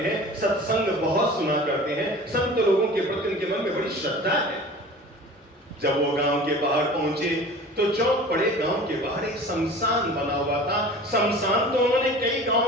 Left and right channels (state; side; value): normal; both; correlation 0.40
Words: हैं, सत्संग बहुत सुना करते हैं, संत लोगों के प्रति उनके मन में बड़ी श्रद्धा है। जब वो गांव के बाहर पहुंचे तो चौक पड़े गांव के बाहर एक शमशान बना हुआ था। शमशान तो उन्होंने कई